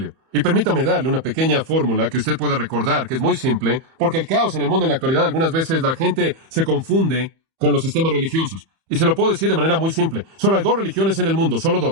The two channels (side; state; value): left; late; 31 ms